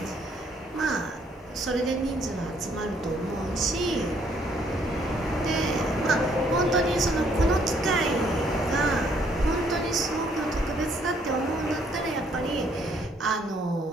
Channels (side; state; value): both; normal; correlation 0.67